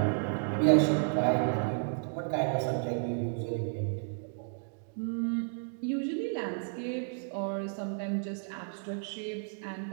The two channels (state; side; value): silent; left; digital silence